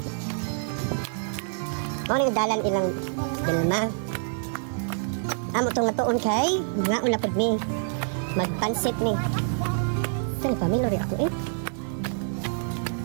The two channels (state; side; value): silent; left; 60 dB below the other